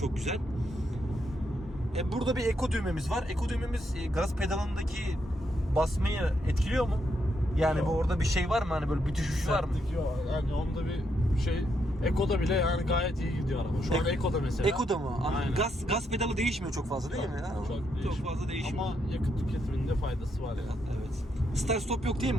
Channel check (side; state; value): both; normal; correlation 0.78